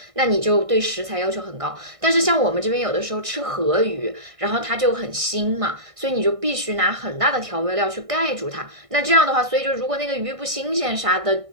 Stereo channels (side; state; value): left; late; 1.6 ms